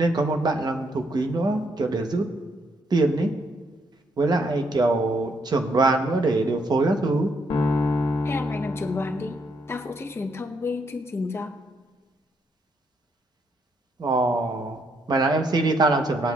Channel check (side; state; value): both; normal; correlation 0.74